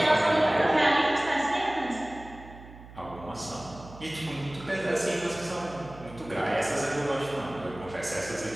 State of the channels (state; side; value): noise; right; hum, 17 dB below the sound